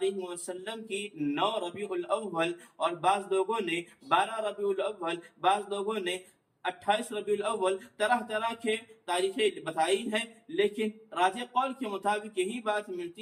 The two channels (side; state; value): both; identical; correlation 1.00